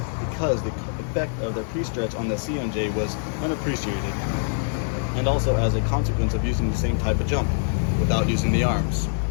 because the effect of the pre-stretch on the CMJ was unappreciated, and also as a consequence of using the same type of jump without using the arms.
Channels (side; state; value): right; silent; digital silence